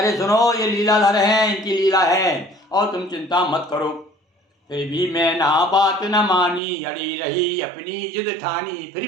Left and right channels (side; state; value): left; drops out; at 6.6 s